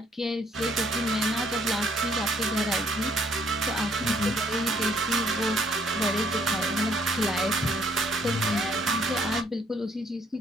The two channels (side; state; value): both; normal; correlation 0.65